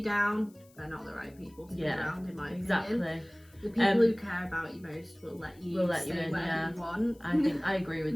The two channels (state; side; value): noise; left; hiss, 29 dB below the sound